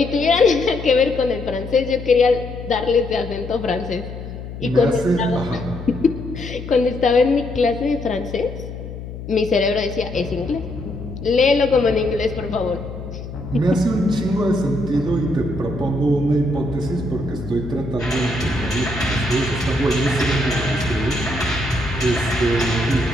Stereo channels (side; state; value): left; noise; hum, 10 dB below the sound